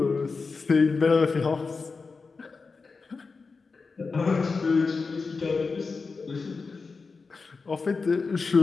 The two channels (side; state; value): right; quieter; 4.4 dB